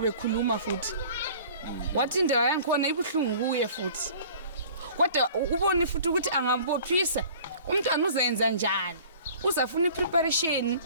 bekhuluma futhi wathi indaba yangikhona ibuhlungu kuye futhi kodwa ubone futhi ukuthi angambophisa umntwana uzenza njani uzafuna ipreparation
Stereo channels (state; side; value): inverted; both; correlation -0.47